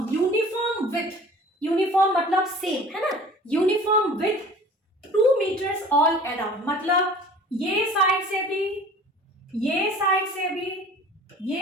uniform width. Uniform मतलब सेम है ना, uniform width 2 metres all around. मतलब ये साइड से भी, ये साइड से भी,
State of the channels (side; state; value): both; normal; correlation 0.45